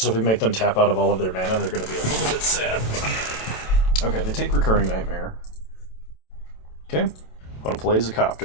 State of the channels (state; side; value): late; right; 27 ms